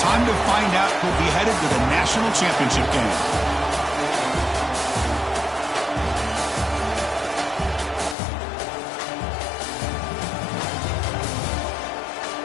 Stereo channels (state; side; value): drops out; right; at 8.2 s